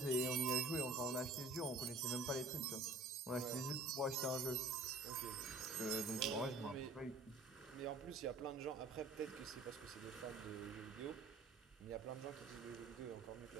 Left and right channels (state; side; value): quieter; left; 3.1 dB